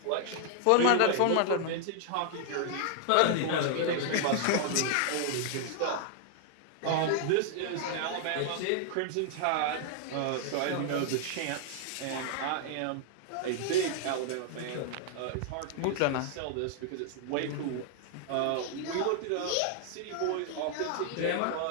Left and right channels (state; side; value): different; both; correlation 0.00